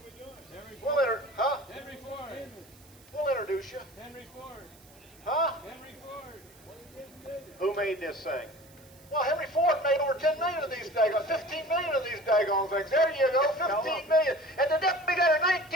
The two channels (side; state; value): right; noise; hiss, 25 dB below the sound